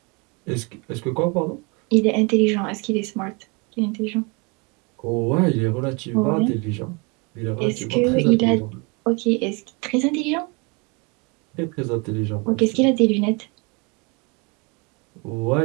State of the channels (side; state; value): left; quieter; 30.4 dB